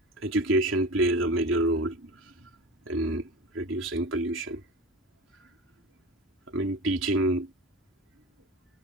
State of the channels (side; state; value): both; normal; correlation 0.31